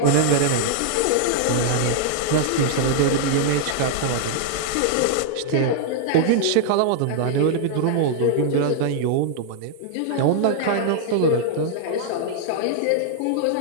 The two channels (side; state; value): both; different; correlation -0.01